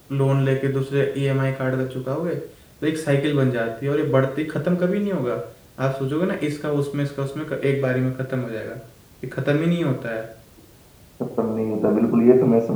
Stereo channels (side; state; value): both; identical; correlation 1.00